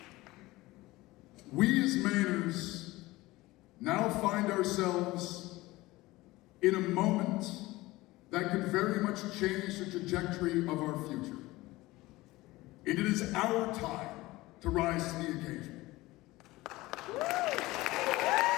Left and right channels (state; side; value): quieter; right; 19.5 dB